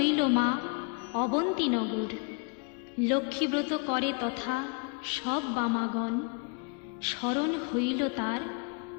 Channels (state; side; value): quieter; right; 33.7 dB